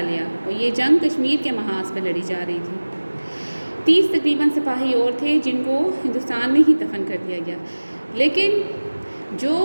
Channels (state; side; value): inverted; both; correlation -1.00